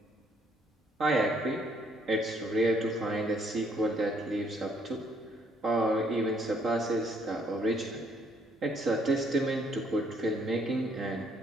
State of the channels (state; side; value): normal; both; correlation 0.67